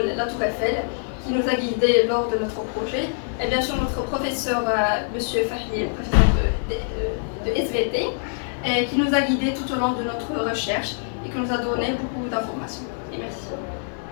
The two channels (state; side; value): silent; right; digital silence